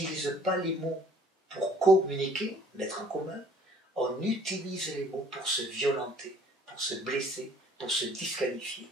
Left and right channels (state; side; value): normal; both; correlation 0.56